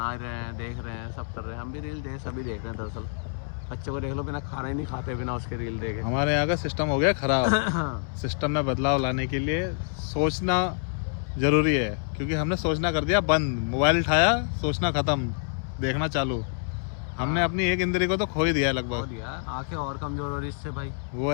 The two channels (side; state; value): right; silent; digital silence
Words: रहे हैं, देख रहे हैं, सब कर रहे हैं। हम भी रील सभी देख रहे हैं दरअसल। बच्चों को देख लो, बिना खाना ही नहीं खाते बिना उसके रील देखे। हमारे यहाँ का सिस्टम हो गया खराब। सिस्टम में बदलाव लाने के लिए सोचना जरूरी है, क्योंकि हमने सोचना कर दिया बंद। मोबाइल उठाया, सोचना खत्म, देखना चालू। हमने अपनी एक इंद्री को तो खो ही दिया है हो लगभग। दिया, आंखें और कमजोर हो रही इससे भाई। वो